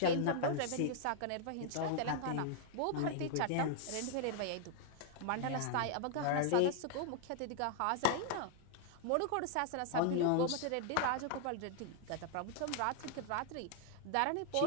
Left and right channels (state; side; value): different; both; correlation 0.00